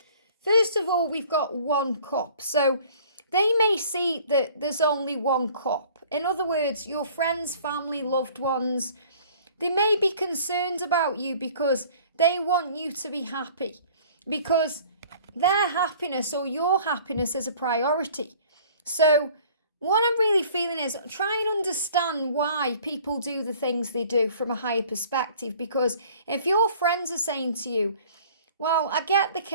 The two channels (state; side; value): inverted; both; correlation -0.51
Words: First of all, we've got one cup. So they may see that there's only one cup. In other words, your friends, family, loved ones, they may be concerned about you because they want you to be happy. Because their happiness or your happiness is a priority. So what I'm really feeling is try and understand why people do the things they do from a higher perspective. Because if your friends are saying to you, well, I get the